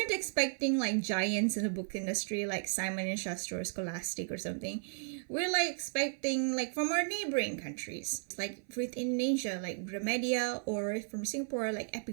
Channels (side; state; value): left; silent; 55 dB below the other